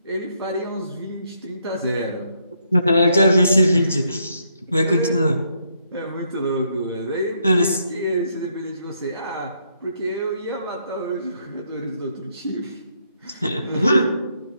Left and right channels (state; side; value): inverted; both; correlation -0.74